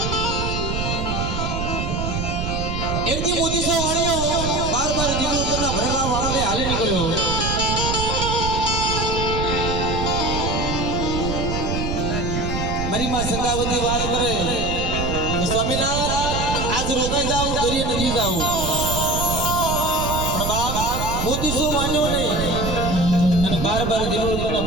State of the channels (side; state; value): right; noise; rumble, 3 dB below the sound